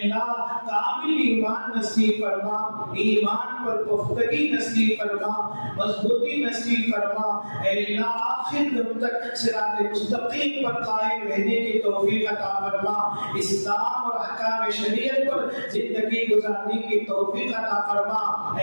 کامل ایمان نصیب فرما، ایمان پر پختگی نصیب فرما، مضبوطی نصیب فرما، اے اللہ آخر دم تک صراط مستقیم پر قائم رہنے کی توفیق عطا فرما، اسلام اور احکام شریعت پر زندگی گزارنے کی توفیق عطا فرما،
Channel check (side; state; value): both; inverted; correlation -1.00